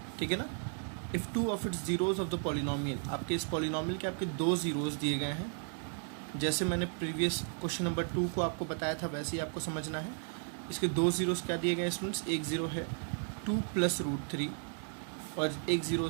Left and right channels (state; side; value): silent; left; 55 dB below the other